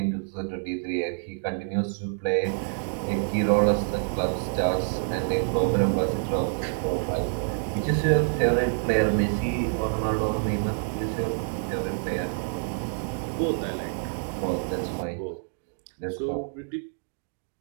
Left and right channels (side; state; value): left; silent; digital silence